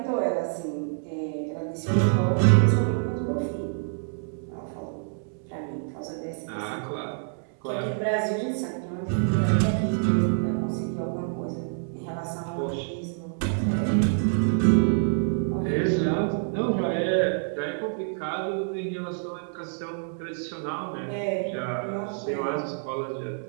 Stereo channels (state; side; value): silent; left; 60 dB below the other